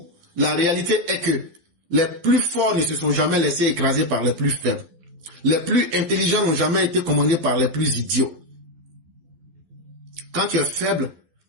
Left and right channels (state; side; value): late; left; 12 ms